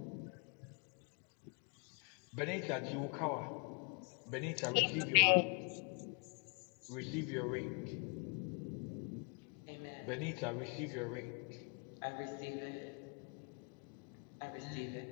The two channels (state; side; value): quieter; right; 37.2 dB